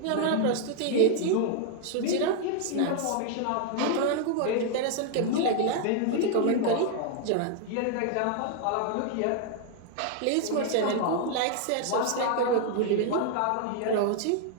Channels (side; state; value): both; different; correlation 0.00